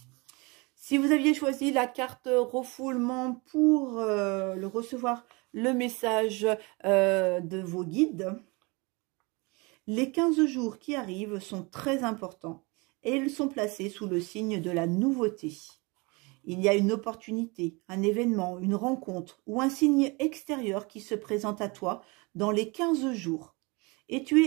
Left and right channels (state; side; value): quieter; left; 27.4 dB